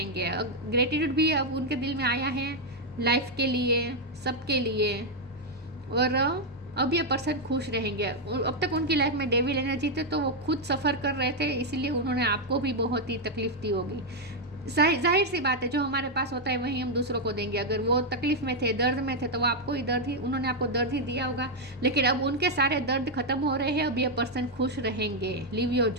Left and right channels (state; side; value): normal; both; correlation 0.01